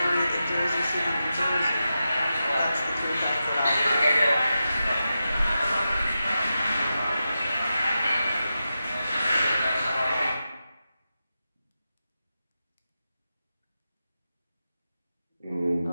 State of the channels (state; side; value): inverted; both; correlation -0.91